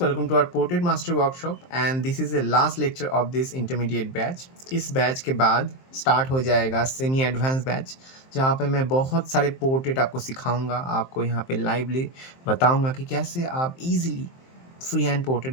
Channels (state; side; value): late; right; 23 ms